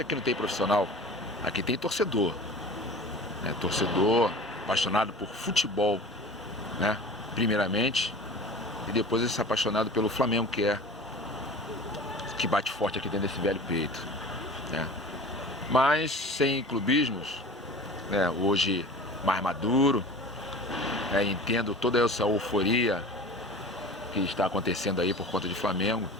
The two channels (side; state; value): both; normal; correlation 0.39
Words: aqui não tem profissional, aqui tem torcedor, né? Torcedor apaixonado por futebol, né? Primeiramente, e depois esse apaixonado pelo Flamengo, que bate forte aqui dentro desse velho peito, né? Mas sem clubismos, né? Hoje mais maduro, né? Entendo toda essa euforia que está acontecendo aí por conta de Flamengo,